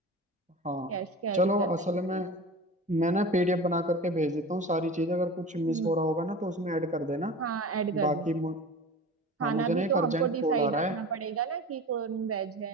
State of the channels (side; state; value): both; normal; correlation 0.34